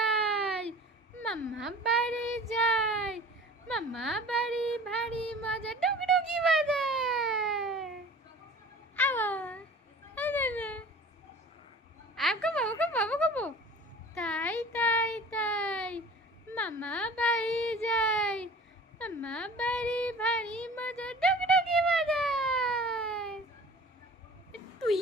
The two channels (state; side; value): normal; both; correlation 0.43